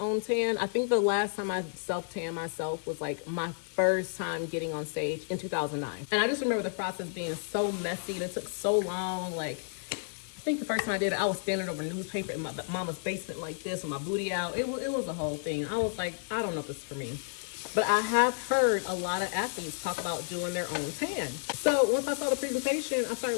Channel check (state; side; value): silent; right; digital silence